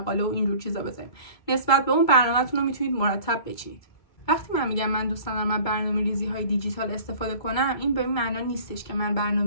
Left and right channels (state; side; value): late; right; 2.3 ms